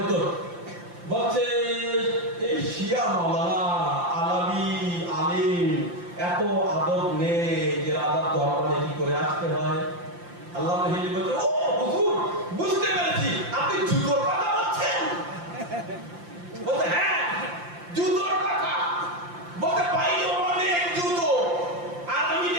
বলছে, এই শিয়া মাওলানা আলাবি আলিম এত আদব নেই যে রাজার দরবারে কি করে আসতে হয়। আল্লামা হিল্লি বলছে, ও হুজুর, বুঝতে পেরেছি, আপনি জুতোর কথা বলছেন। বলছে, হ্যাঁ জুতোর কথা। বলতে ভাই অনেক জুতো, আর আমি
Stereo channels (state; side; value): late; left; 5.8 ms